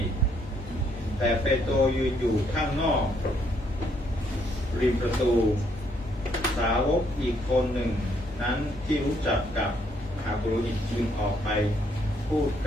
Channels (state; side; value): normal; both; correlation 0.70